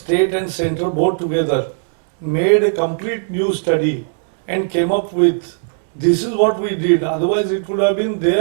and central board together made a complete new study and came up with this is what we did. Otherwise it could have been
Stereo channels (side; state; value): left; silent; digital silence